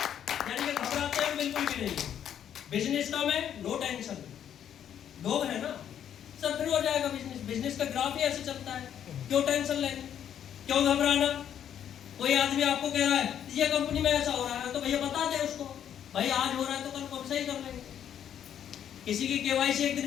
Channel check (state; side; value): quieter; right; 9.6 dB